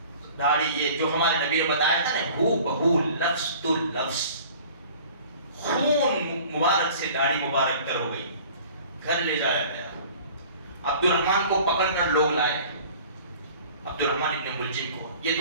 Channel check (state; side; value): inverted; both; correlation -0.47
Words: داڑھی, یہ جو ہمارے نبی نے بتایا تھا نا, ہو بہو لفظ تو لفظ, خون مبارک سے داڑھی مبارک تر ہو گئی. گھر لے جایا گیا, عبد الرحمن کو پکڑ کر لوگ لائے, عبد الرحمن ابن ملجم کو, یہ